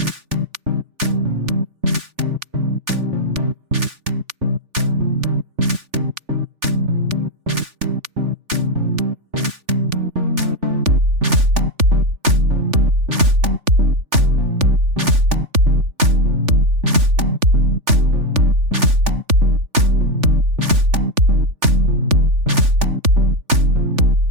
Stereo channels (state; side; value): late; left; 3.4 ms